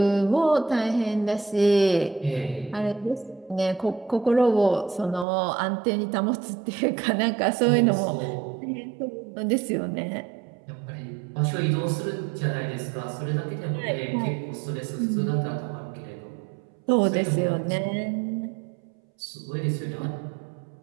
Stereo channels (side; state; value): left; drops out; at 5.2 s